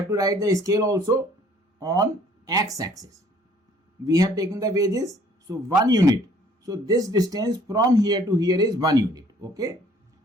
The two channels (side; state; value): both; normal; correlation 0.58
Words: to write the scale also on x-axis. We have taken the wages, so 1 unit. So this distance from here to here is 1 unit. Okay.